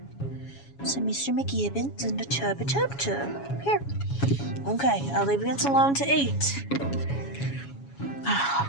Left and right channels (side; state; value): right; late; 7.2 ms